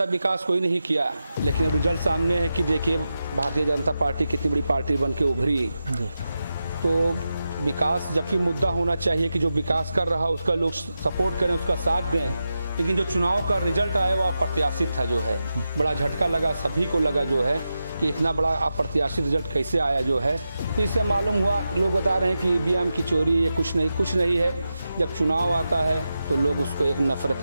विकास कोई नहीं किया, लेकिन रिजल्ट सामने है कि देखिए भारतीय जनता पार्टी कितनी बड़ी पार्टी बन के उभरी। तो विकास, जबकि मुद्दा होना चाहिए कि जो विकास कर रहा है उसका लोग सपोर्ट करें, उसका साथ दें, लेकिन जो चुनाव का रिजल्ट आया वो अप्रत्याशित था जो है। बड़ा झटका लगा, सभी को लगा जो है कि इतना बड़ा अप्रत्याशित रिजल्ट कैसे आया जो है। तो इससे मालूम हुआ, लोग बता रहे हैं कि ईवीएम की चोरी, ये कुछ नहीं है। जब चुनाव आता है तो लोग उसको एक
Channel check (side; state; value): both; inverted; correlation -0.90